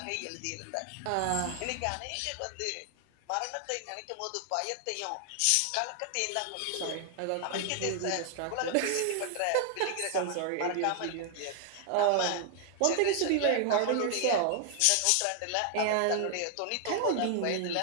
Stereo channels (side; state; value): both; different; correlation 0.00